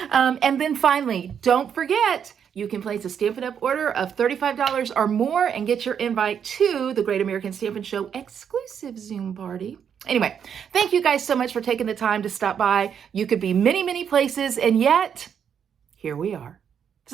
And then finally, don't forget, you can place a Stampin' Up! Order of $35 or more and get your invite to the Great American Stampin' Show exclusive Zoom party. Anyway, thank you guys so much for taking the time to stop by. You could be many, many places, and yet here we are.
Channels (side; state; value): left; quieter; 7.9 dB